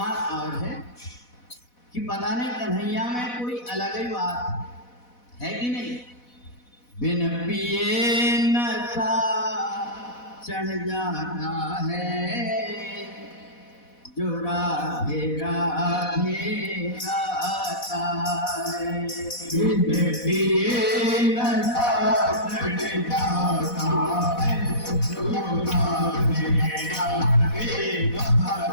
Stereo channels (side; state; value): right; late; 4.1 ms